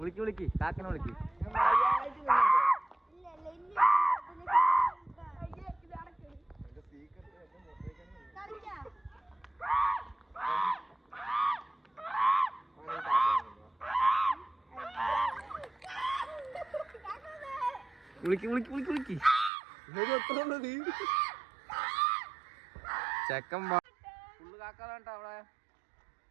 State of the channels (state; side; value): drops out; left; at 19.5 s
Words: വിളിക്ക് കാക്കനെ വിളിക്ക്. വിളിക്ക് വിളിക്ക് വിളിക്ക് വിളിക്ക്. ചെക്കൻ ഫുള്ള് കാക്കാതാണ്ടാ അവിടെ.